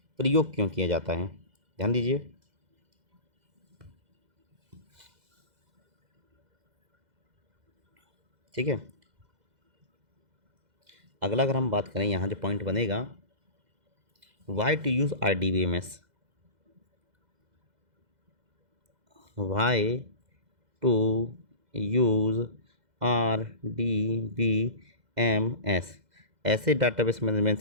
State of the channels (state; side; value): late; left; 2.0 ms